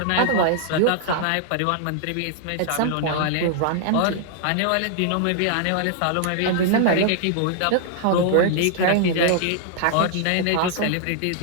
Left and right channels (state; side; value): different; both; correlation -0.01